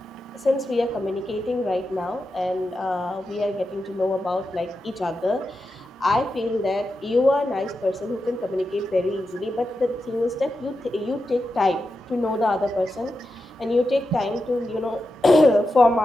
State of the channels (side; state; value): both; normal; correlation 0.89